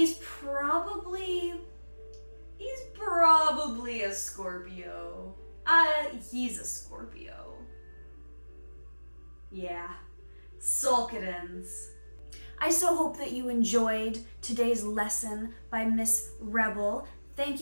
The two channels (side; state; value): both; inverted; correlation -1.00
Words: probably a Scorpio. He's a Scorpio. Yeah. Solkadins. I so hope that you enjoyed today's lesson by Miss Rebel. Thank